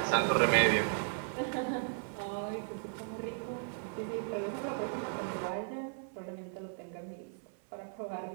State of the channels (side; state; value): left; silent; 54 dB below the other